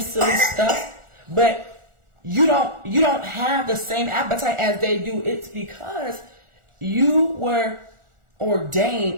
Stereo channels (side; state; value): left; late; 1.4 ms